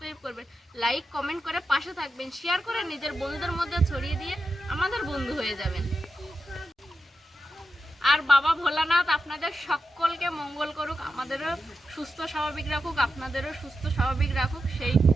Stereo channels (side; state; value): both; normal; correlation 0.89